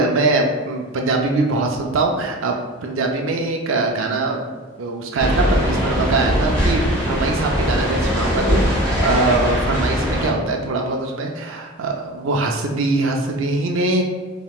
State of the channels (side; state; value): both; normal; correlation 0.33